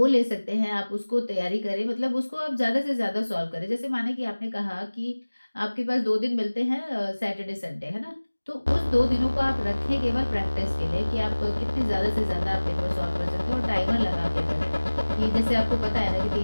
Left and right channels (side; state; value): both; inverted; correlation -1.00